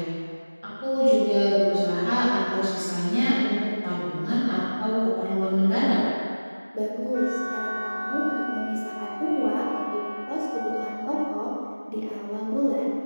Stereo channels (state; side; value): inverted; both; correlation -1.00